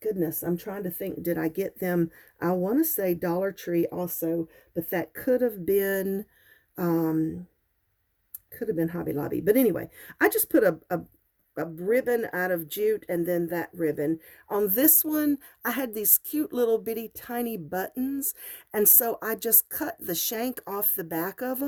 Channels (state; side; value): identical; both; correlation 1.00